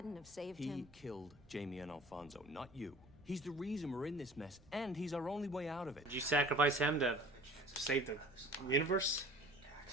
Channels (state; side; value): noise; right; rumble, 27 dB below the sound